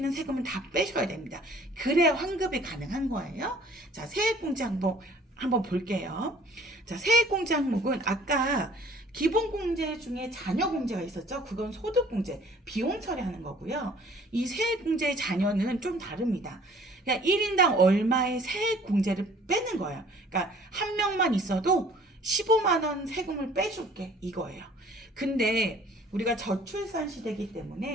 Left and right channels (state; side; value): normal; both; correlation 0.54